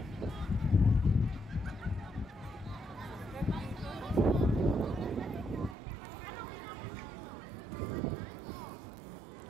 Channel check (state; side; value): drops out; left; at 5.8 s